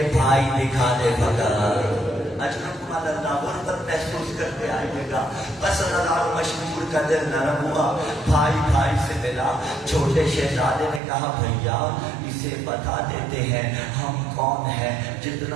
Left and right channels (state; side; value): drops out; left; at 11.0 s